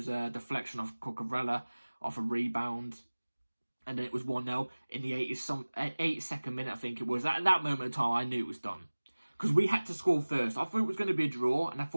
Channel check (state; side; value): inverted; both; correlation -1.00